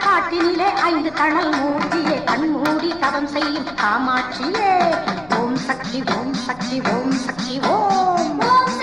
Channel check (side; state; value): left; noise; rumble, 23 dB below the sound